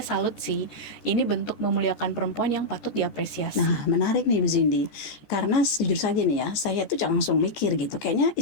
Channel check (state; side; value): late; right; 14 ms